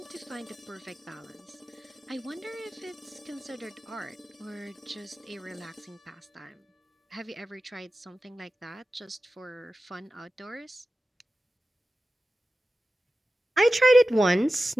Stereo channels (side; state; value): both; normal; correlation 0.94